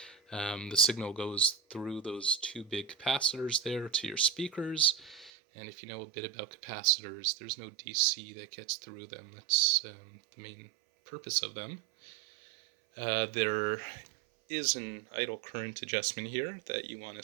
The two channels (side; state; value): left; drops out; at 5.3 s